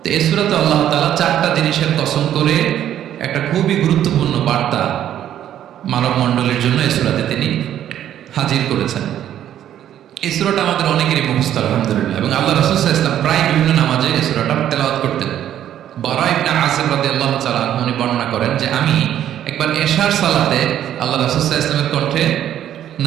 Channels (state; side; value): quieter; left; 11.0 dB